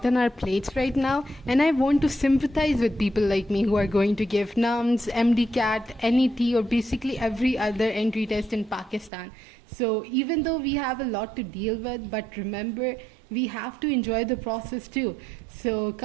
on our plates right now, and I want to sympathize with people like me who are going to give NUMS, MDCAT, NET or basically every other entry test in Pakistan. So even though we have a lot to deal with, but remember, we have to enjoy the process too. So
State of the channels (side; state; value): left; drops out; at 9.1 s